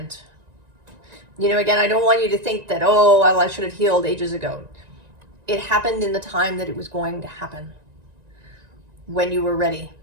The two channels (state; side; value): late; left; 1.9 ms